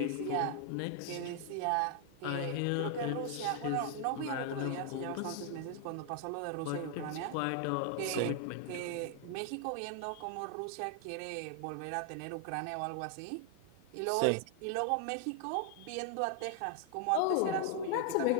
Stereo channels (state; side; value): different; both; correlation 0.00